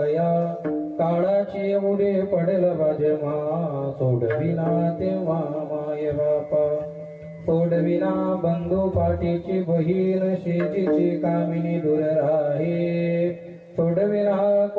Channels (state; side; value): identical; both; correlation 1.00